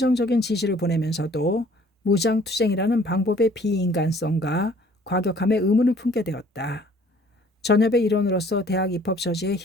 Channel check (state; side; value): normal; both; correlation 0.56